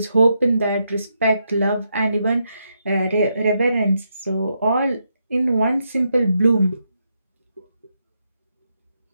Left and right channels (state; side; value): inverted; both; correlation -0.81